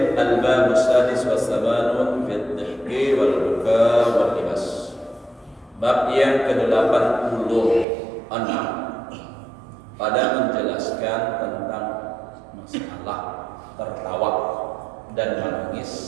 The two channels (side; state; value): left; drops out; at 7.9 s